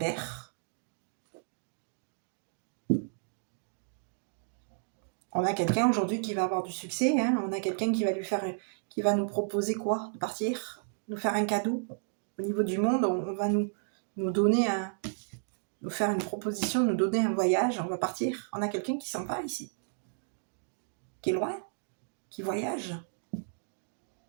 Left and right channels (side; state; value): left; silent; digital silence